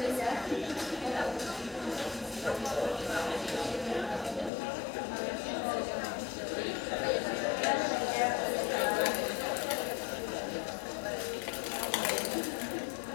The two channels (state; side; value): drops out; right; at 4.5 s